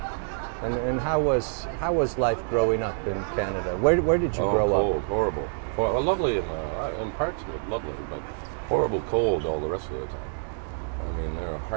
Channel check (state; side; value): silent; left; digital silence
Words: And how was life growing up in Canada? Where did you grow cold, up? horrible. Well, lovely in parts of it, lovely, but horrible cold all the rest of the time. I mean, they're